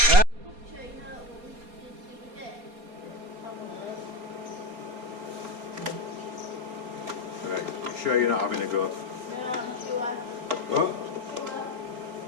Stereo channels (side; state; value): left; late; 4.1 ms